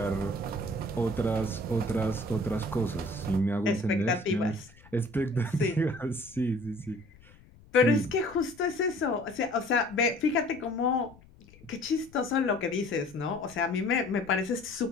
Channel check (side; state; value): left; noise; rumble, 24 dB below the sound